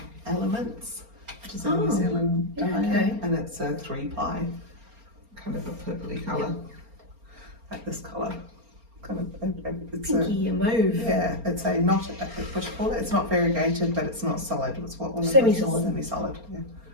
Elements, which is a New Zealand dye, okay. and it's a 3-ply. Kind of a purpley colour, like this colour. Kind of, it's Pinky mauve. yeah, it's a not, what do you call it? It's not variegated, but it's not solid. It's what one of Semi-solid. Semi-solid, yeah.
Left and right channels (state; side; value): late; left; 4.3 ms